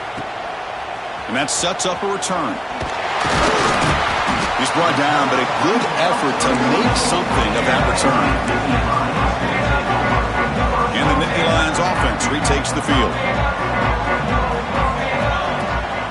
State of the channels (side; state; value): both; identical; correlation 1.00